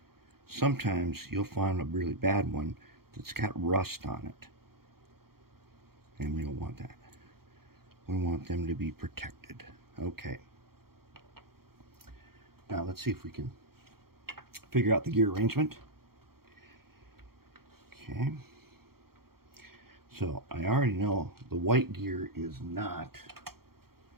sometimes you'll find a really bad one that's got rust on it. And we don't want that. We want them to be protected. Okay. Now let's see if we can figure out the gear arrangement. Okay. So I already know the white gear is not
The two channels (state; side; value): late; left; 0.94 ms